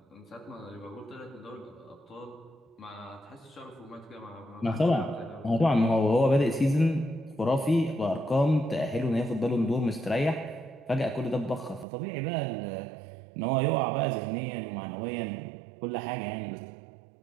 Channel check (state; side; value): drops out; left; at 11.9 s